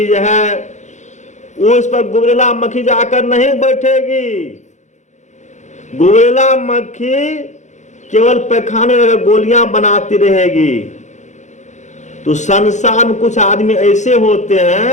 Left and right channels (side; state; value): right; late; 0.34 ms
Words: है, उस पर गुबरेला मक्खी जाकर नहीं बैठेगी। गुबरेला मक्खी केवल पैखाने में गोलियां बनाती रहेगी। तो संसार में कुछ आदमी ऐसे होते